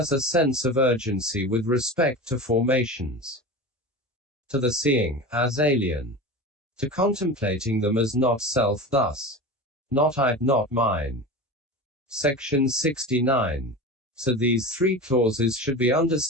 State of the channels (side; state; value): both; normal; correlation 0.29